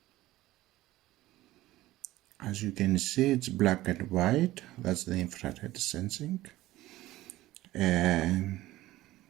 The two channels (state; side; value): quieter; left; 16.5 dB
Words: As you can see, it's black and white. That's the infrared sensing. And